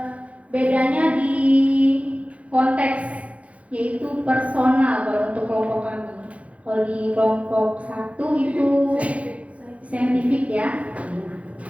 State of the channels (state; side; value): late; left; 0.065 ms